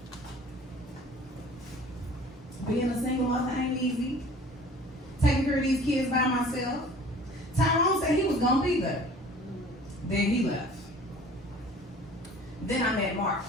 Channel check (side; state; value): both; normal; correlation 0.48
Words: Being a single mother ain't easy. Taking care of these kids by myself. Tyrone said he was gonna be there. Then he left. Then I met Mark.